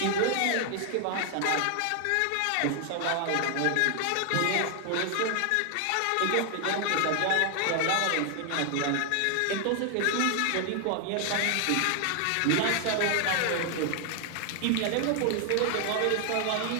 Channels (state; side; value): different; both; correlation 0.00